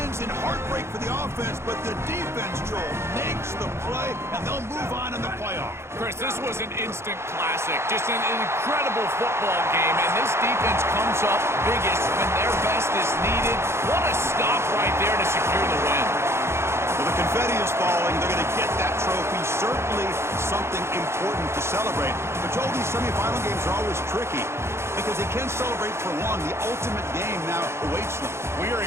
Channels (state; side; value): late; left; 0.13 ms